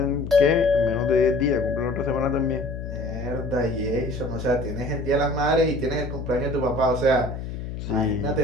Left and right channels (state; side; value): noise; left; hum, 7 dB below the sound